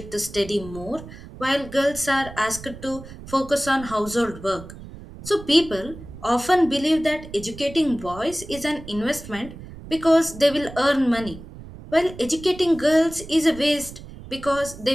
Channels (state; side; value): noise; right; rumble, 15 dB below the sound